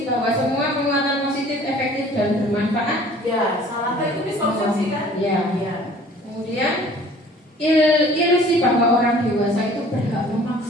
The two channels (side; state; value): both; normal; correlation 0.51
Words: bahwa semua penguatan positif efektif dan bermanfaat. Ya, salah itu miskonsepsi Ya. Kemudian ilusi bahwa orang dewasa itu berhak